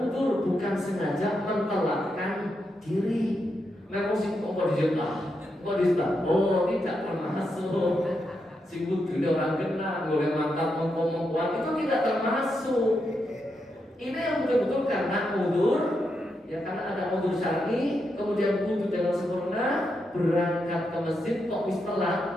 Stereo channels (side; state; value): both; normal; correlation 0.84